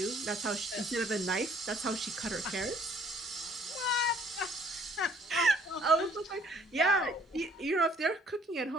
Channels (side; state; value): both; normal; correlation 0.61